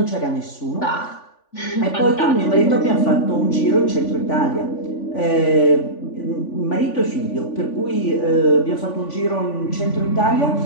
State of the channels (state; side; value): late; right; 3.5 ms